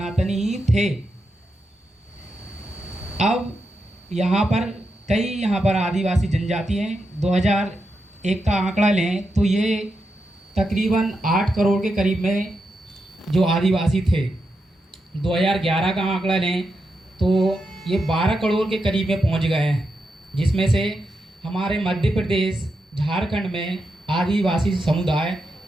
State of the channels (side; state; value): both; normal; correlation 0.86